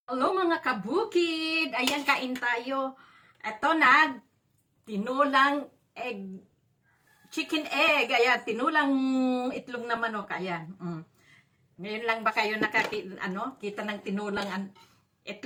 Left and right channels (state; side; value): identical; both; correlation 1.00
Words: Hello mga kabukid! Ayan, kain tayo. Ito na, tinulang egg, chicken egg. Ayan, tinulang itlog na manok. Ayan. Ngayon lang ba kayo kita ng tinulang